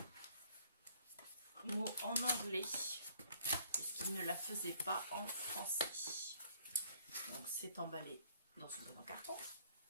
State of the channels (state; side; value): inverted; both; correlation -0.61